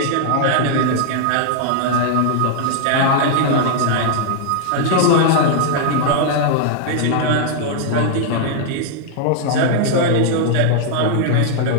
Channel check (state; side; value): different; both; correlation 0.00